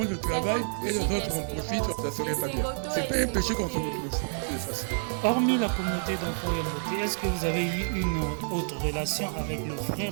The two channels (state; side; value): silent; left; digital silence